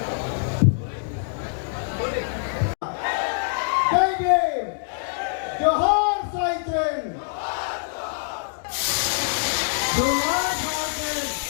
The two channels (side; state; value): right; silent; digital silence